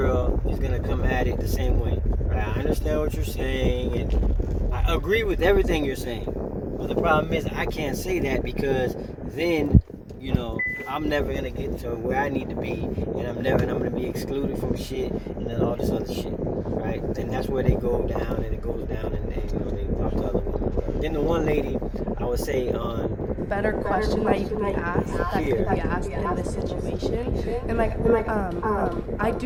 is gonna come at it the same way. Right? I understand what you're saying, and I agree with everything you're saying. But the problem is, I can't say that because then, I'm never gonna get to where I need to be, and I'm gonna be excluded from shit, and then all this other shit, right? And that's where they go down, and it goes down, and they talk to other women. Then the one lady, I would say on Better question that you can be asked that could be asked in this situation, and I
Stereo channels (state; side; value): identical; both; correlation 1.00